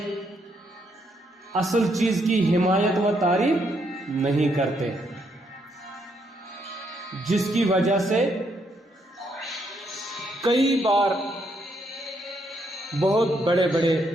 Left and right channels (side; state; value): both; normal; correlation 0.75